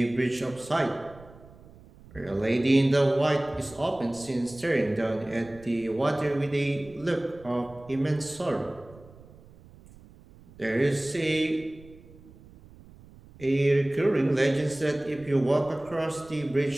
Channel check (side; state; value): right; noise; rumble, 22 dB below the sound